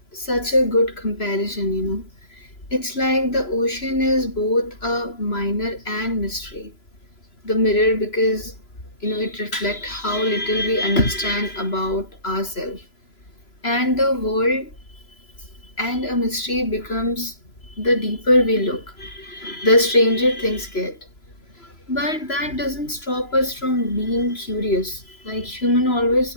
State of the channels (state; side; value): late; right; 3.0 ms